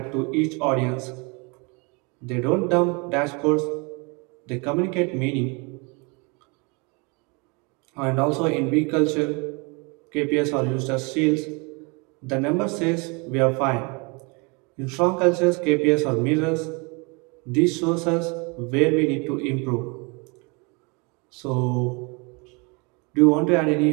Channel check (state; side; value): quieter; left; 30.5 dB